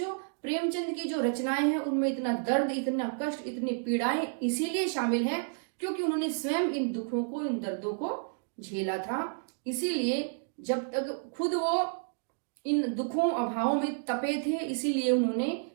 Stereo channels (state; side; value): silent; left; digital silence